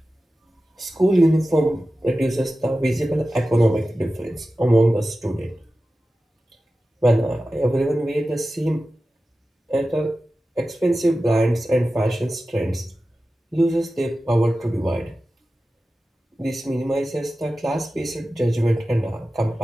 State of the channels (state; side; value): normal; both; correlation 0.94